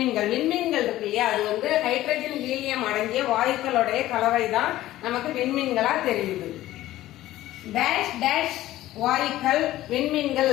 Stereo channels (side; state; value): right; quieter; 15.1 dB